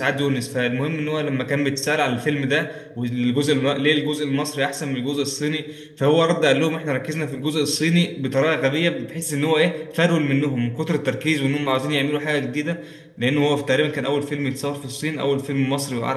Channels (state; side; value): identical; both; correlation 1.00